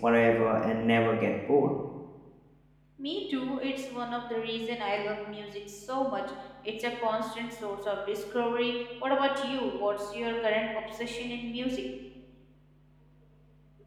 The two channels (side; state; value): both; identical; correlation 1.00